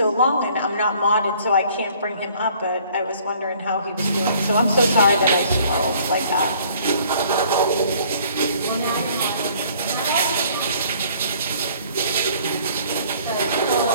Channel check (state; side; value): inverted; both; correlation -0.57